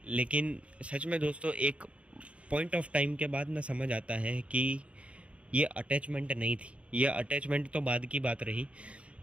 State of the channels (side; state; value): left; late; 0.062 ms